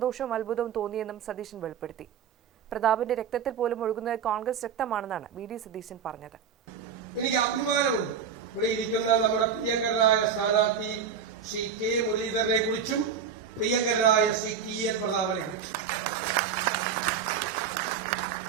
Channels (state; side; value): quieter; left; 7.0 dB